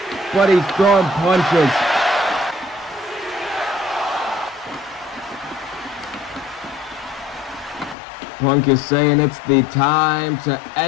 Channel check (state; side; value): drops out; right; at 8.0 s